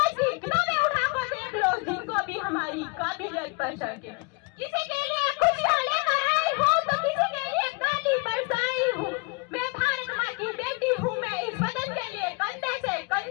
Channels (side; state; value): right; quieter; 29.6 dB